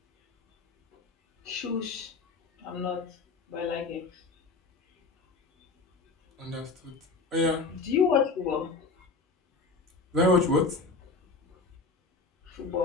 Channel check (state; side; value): quieter; right; 4.0 dB